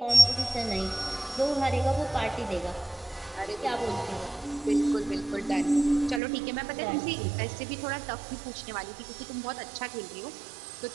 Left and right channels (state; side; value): drops out; left; at 6.2 s